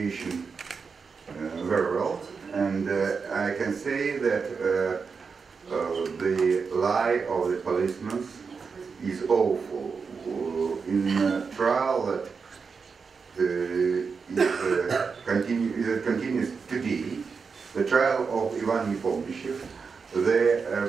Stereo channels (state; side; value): quieter; left; 5.3 dB